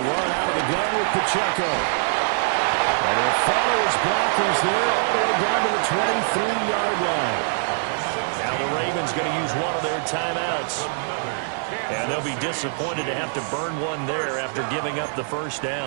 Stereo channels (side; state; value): left; silent; 56 dB below the other